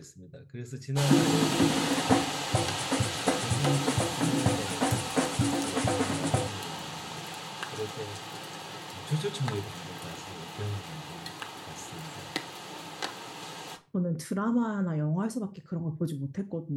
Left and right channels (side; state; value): both; identical; correlation 1.00